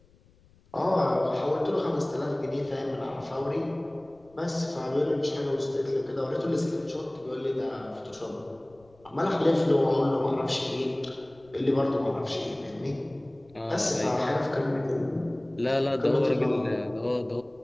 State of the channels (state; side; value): noise; left; rumble, 29 dB below the sound